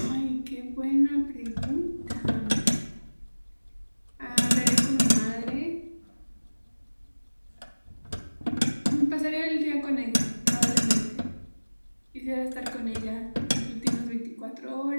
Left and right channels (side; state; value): both; inverted; correlation -1.00